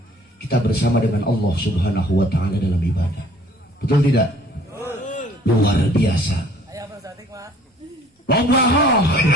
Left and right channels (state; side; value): normal; both; correlation 0.55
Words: kita bersama dengan Allah subhanahu wa ta'ala dalam ibadah betul tidak? Luar biasa. Loba